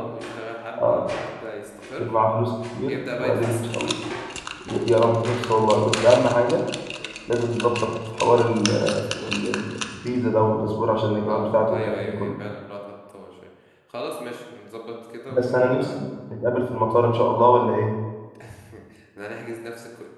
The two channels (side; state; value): both; identical; correlation 1.00